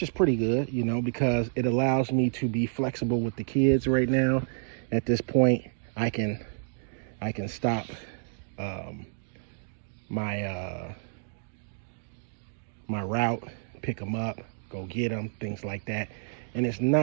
is pretty good, because it allows me to be flexible with the kids right now. At this point, I can stop my my route, pick them up, go get them, things like that. And it's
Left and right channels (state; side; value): silent; left; digital silence